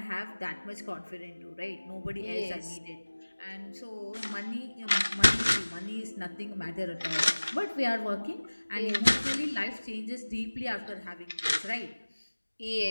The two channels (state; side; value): inverted; both; correlation -1.00